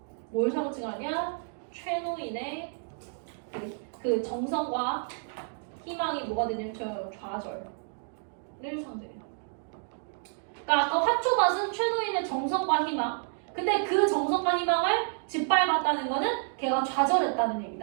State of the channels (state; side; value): silent; left; digital silence